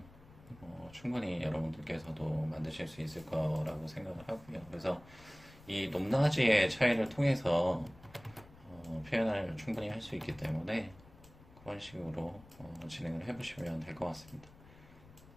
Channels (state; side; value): noise; left; rumble, 22 dB below the sound